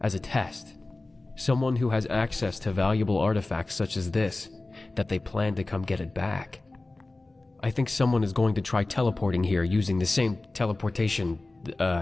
as a test. Someone who has access to valuable artifacts such as this, that they plan to come get it back. I think someone is going to try teleporting here using the same teleportation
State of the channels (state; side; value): quieter; right; 3.1 dB